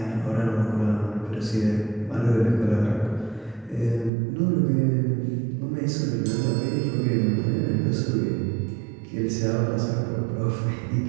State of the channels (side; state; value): left; drops out; at 4.1 s